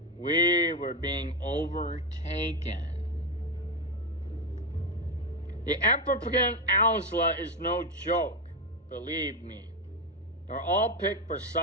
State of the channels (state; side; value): normal; both; correlation 0.10